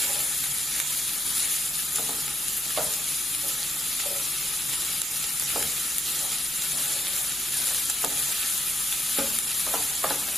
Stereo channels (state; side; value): normal; both; correlation 0.80